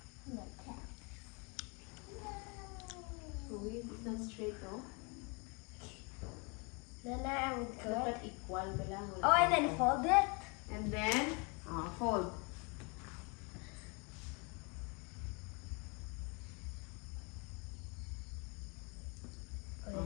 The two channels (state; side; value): quieter; right; 32.1 dB